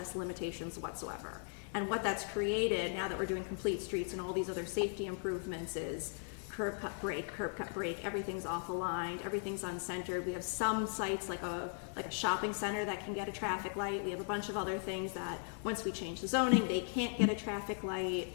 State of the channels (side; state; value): right; silent; 52 dB below the other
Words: limitations whatsoever. And what that's created, now that we're doing complete streets and all these other safety improvements, is curb cut break, everything's off aligned, everything's uncentered. We have some sites like a shopping center that can get a traffic light. We have a bunch of other things that once we change the zoning, they can't get a traffic light.